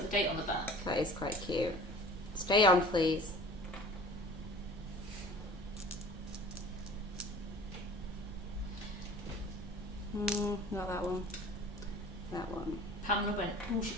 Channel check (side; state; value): both; normal; correlation 0.43